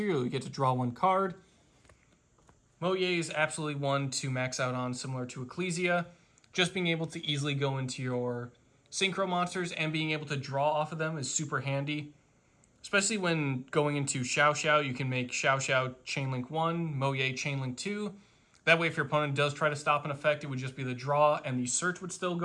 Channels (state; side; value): identical; both; correlation 1.00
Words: you get to draw 1 card. Moye is absolutely one to max out on, similar to Ecclesia. Just being able to easily go into your Synchro monsters and being able to draw off of them is super handy. Especially when going into Xiao, you can make Xiao Chainlink 1, Moye Chainlink 2. That way, if your opponent does try to stop an effect, it would just be the draw and the search would still